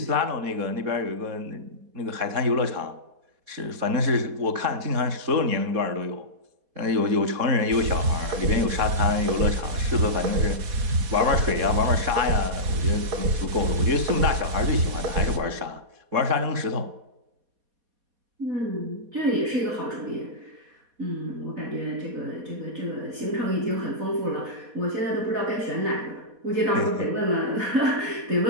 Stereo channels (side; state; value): left; late; 4.2 ms